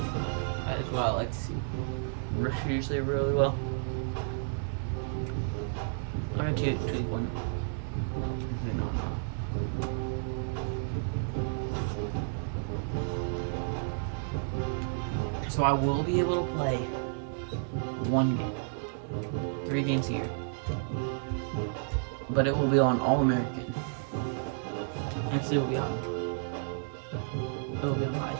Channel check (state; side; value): silent; left; digital silence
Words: is what I like to see. Rush usually really well. I'm gonna tweak one. So I will be able to play 1 game. 3 games a year. But it will be on All-American. Actually, it will be on